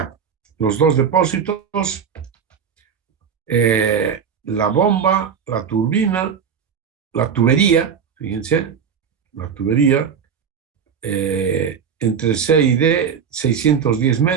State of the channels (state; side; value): quieter; left; 7.1 dB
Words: los dos depósitos, la bomba, la turbina, la tubería, fíjense, la tubería, entre C y D, 610